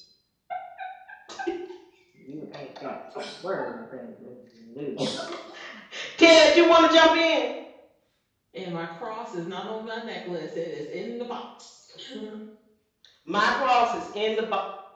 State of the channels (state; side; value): identical; both; correlation 1.00